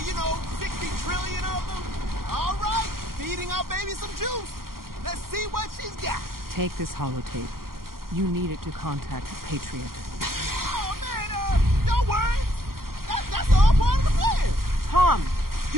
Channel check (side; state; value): left; late; 0.92 ms